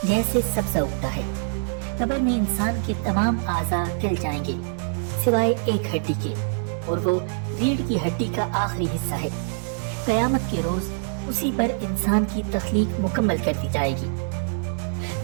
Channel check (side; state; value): left; silent; 62 dB below the other